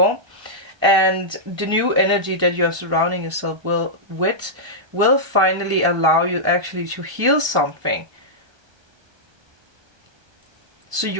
And the new energy that you're surrounding yourself with will finally allow you actually to heal something. So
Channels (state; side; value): late; left; 1.3 ms